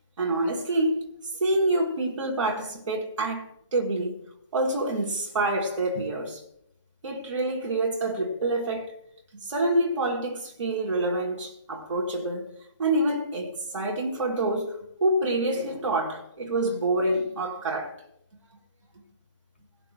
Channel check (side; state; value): both; inverted; correlation -0.49